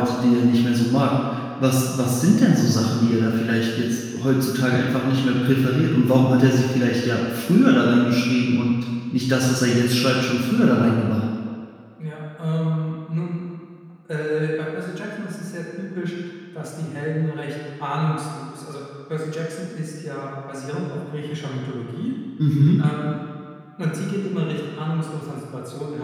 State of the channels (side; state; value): both; identical; correlation 1.00